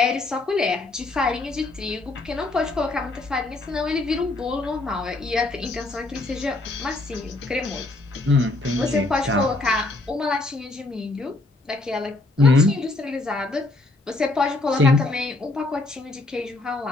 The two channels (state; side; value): quieter; right; 3.1 dB